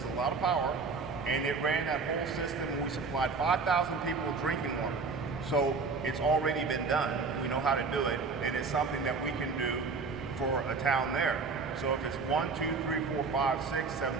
a lot of power, and it ran that whole system, and we supplied 5,000 people with drinking water. So it's already been done. We know how to do it, and it's something that we can do for a town there. So if it's 1, 2, 3, 4, 5, 6, 7,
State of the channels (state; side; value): quieter; left; 4.5 dB